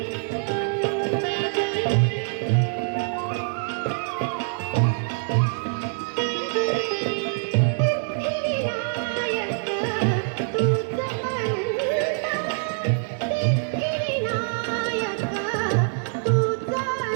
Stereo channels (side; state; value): left; silent; 62 dB below the other